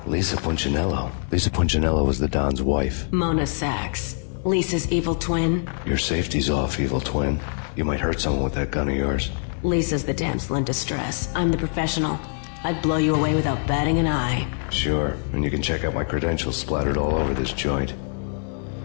Lisa Punchinello. Lisa Punchinello was the Don's wife. Mona Sachs. Lisa's evil twin. Your safety's off, evil twin. You might hurt someone with that gun of yours. Lisa's the damsel in distress. I'm the professional. I'd blow you away without batting an eye. Sure, and you can check out my credentials splattered all over this joint.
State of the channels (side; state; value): right; silent; digital silence